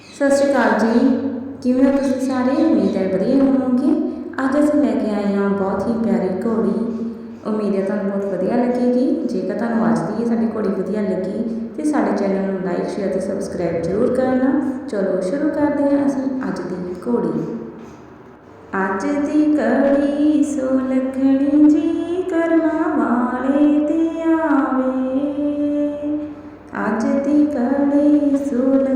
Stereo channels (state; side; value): identical; both; correlation 1.00